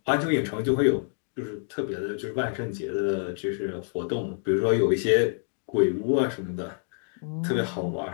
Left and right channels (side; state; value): right; silent; digital silence